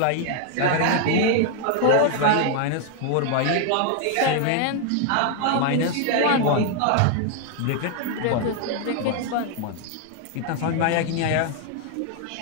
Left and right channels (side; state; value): both; different; correlation 0.00